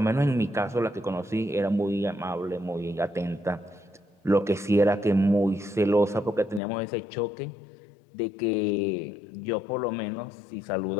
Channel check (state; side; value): drops out; right; at 6.6 s